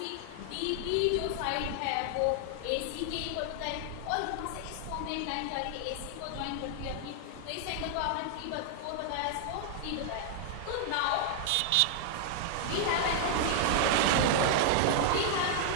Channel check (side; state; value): both; different; correlation 0.00